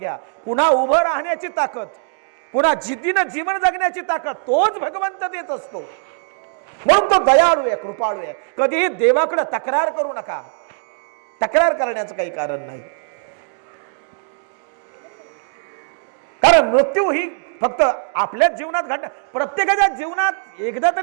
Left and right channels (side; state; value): left; silent; digital silence